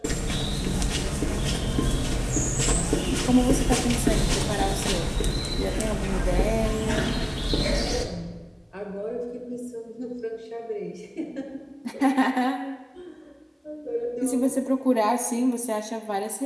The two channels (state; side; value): identical; both; correlation 1.00